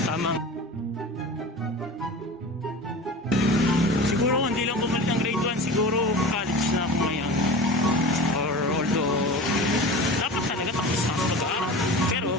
tamang hindi lang bumalik ng grade 1, siguro college na ako ngayon. Or although, dapat talaga tapos na ako mag-aaral. Pero,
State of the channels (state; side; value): normal; both; correlation 0.34